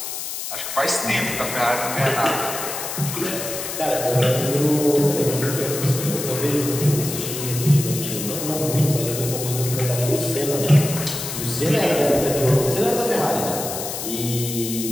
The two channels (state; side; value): noise; left; hiss, 6 dB below the sound